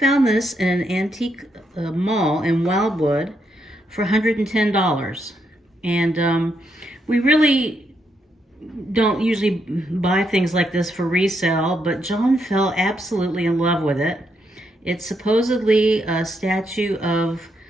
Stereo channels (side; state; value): both; normal; correlation 0.79